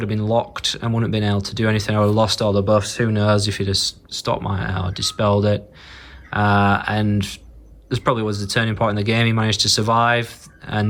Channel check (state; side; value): identical; both; correlation 1.00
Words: have been locked and wouldn't have been able to do anything. I would have lost all the buffs. Who knows if he'd have stopped or dispelled it. And this probably was the turning point in the game. He managed to survive,